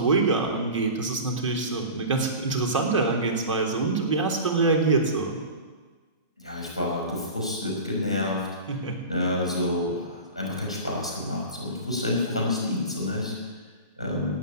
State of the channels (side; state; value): both; inverted; correlation -0.33